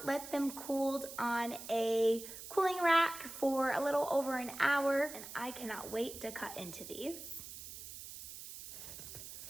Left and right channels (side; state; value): right; noise; hiss, 12 dB below the sound